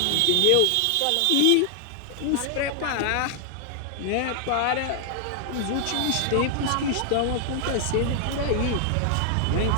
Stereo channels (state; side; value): different; both; correlation 0.00